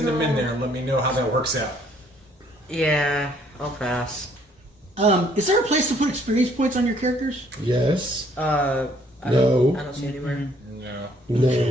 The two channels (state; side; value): normal; both; correlation 0.63